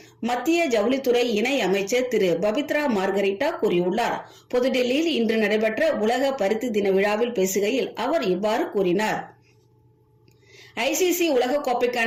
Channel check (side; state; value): both; identical; correlation 1.00